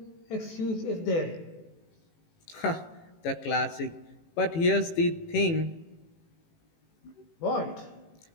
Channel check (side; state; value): right; late; 18 ms